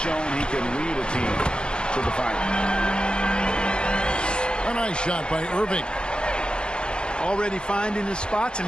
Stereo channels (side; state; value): right; late; 0.051 ms